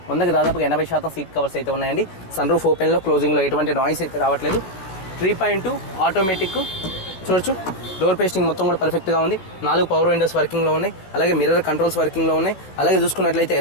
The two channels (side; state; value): right; late; 16 ms